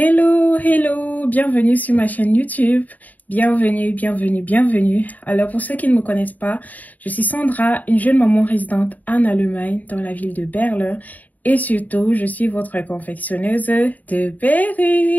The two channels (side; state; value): right; late; 0.077 ms